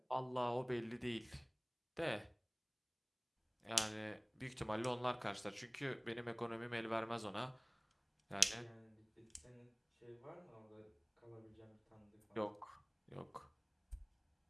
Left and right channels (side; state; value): both; identical; correlation 1.00